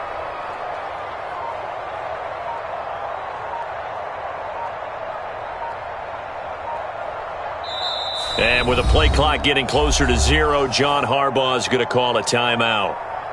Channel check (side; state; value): both; identical; correlation 1.00